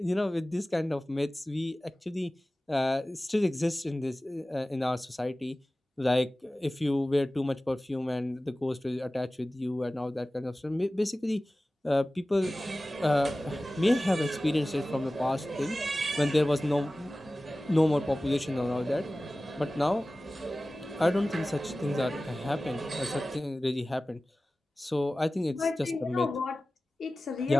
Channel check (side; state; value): both; normal; correlation 0.97